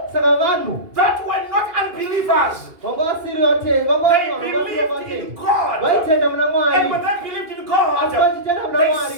that were not unbelievers. They believed in God. And when they believed in God, they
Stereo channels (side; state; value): left; late; 2.4 ms